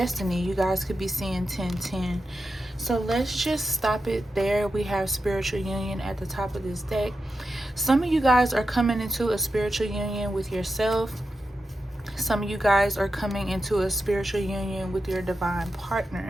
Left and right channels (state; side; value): normal; both; correlation 0.90